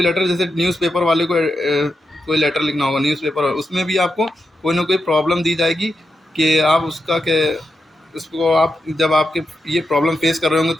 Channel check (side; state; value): both; normal; correlation 0.87